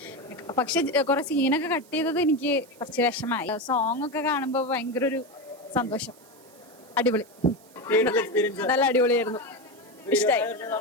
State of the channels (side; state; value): right; noise; hiss, 26 dB below the sound